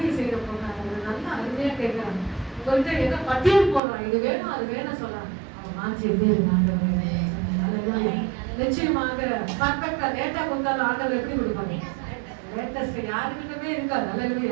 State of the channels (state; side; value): drops out; left; at 3.8 s